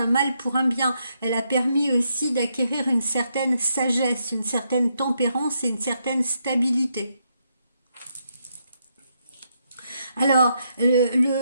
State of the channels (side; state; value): both; inverted; correlation -0.78